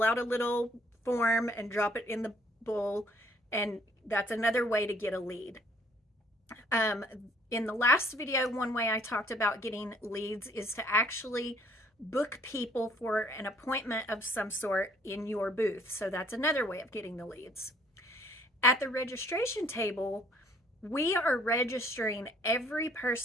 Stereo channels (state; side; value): normal; both; correlation 0.61